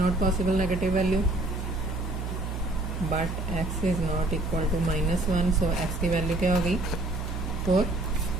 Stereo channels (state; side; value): noise; right; hum, 5 dB below the sound